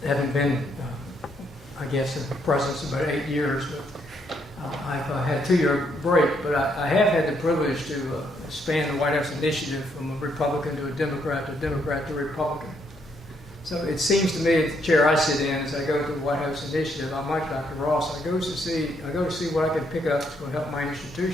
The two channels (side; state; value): both; normal; correlation 0.73